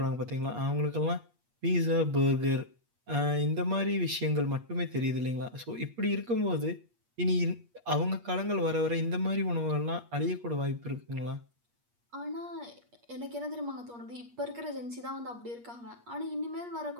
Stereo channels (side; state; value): left; late; 8.4 ms